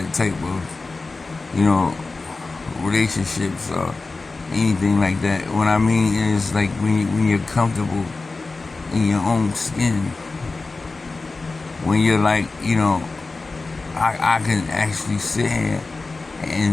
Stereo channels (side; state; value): right; quieter; 3.7 dB